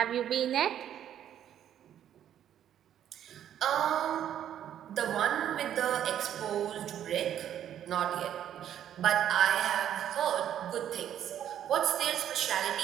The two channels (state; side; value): quieter; left; 10.4 dB